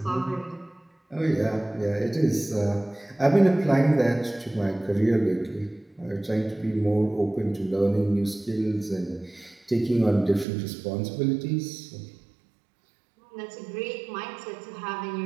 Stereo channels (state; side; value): drops out; left; at 10.5 s